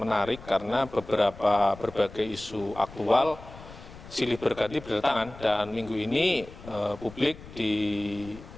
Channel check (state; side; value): noise; left; rumble, 17 dB below the sound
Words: karena berbagai isu aktual silih berganti berdatangan dan minggu ini publik